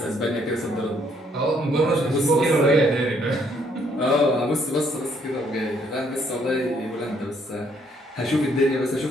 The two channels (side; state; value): both; normal; correlation 0.68